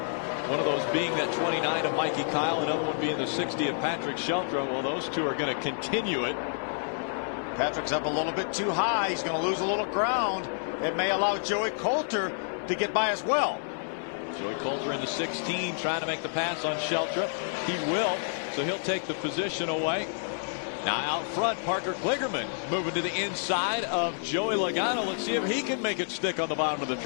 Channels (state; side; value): silent; right; digital silence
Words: One of those being that 29 of Mikey Kyle, another one being the 60 of Patrick Sheltra. Well, those two are going to continue it. Patrick's up a little bit too high. He's going to lose a little ground. It may allow Joey Coulter to get by as well. Joey Coulter in the 16 trying to make the pass on Sheltra. He will, so he'll take the position away. Now out front, Parker Kligerman moving to the inside of Joey Logano. Let's see if he can make it stick on the bottom of the